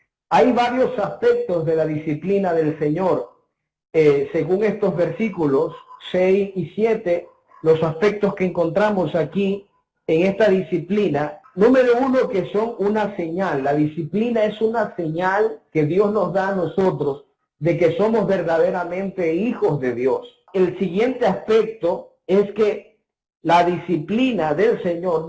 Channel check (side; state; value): both; identical; correlation 1.00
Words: Hay varios aspectos de la disciplina del Señor. Según estos versículos 6 y 7, los aspectos que encontramos aquí en esta disciplina, número uno, que son una señal. La disciplina es una señal que Dios nos da a nosotros de que somos verdaderamente hijos de Dios. El siguiente aspecto es que la disciplina del Señor